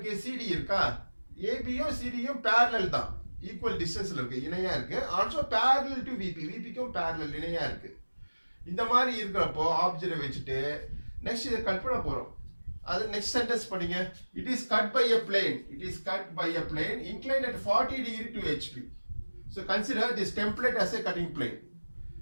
CD இருக்கா? ஏபியும் சிடியும் parallel தான், ஈக்குவல் டிஸ்டன்ஸ்ல இருக்கு, இணையா இருக்கு. Also parallel to VP, VPக்கும் parallel இணையா இருக்கு. இந்த மாதிரி இருக்கிறப்போ ஆப்ஜெக்ட் வச்சுட்டு நெக்ஸ்ட் இதை கட் பண்ண போறோம். அது நெக்ஸ்ட் சென்டென்ஸ் படிங்க. It is cut by a plane. It is cut by a plane inclined at 40 degree to HP. So consider this template as a cutting plane.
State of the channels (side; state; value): both; inverted; correlation -1.00